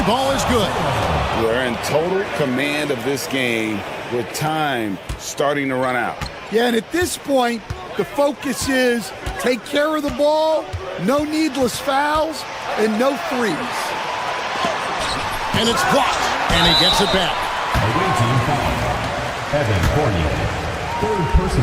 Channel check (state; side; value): identical; both; correlation 1.00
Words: is good. They're in total command of this game with time starting to run out. Yeah, and at this point, the focus is take care of the ball, no needless fouls, and no threes. And it's blocked, and he gets it back. Away team foul. Evan Fournier. Third